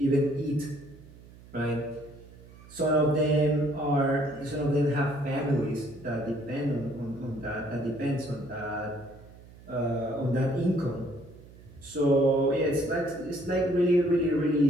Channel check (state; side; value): noise; right; hum, 21 dB below the sound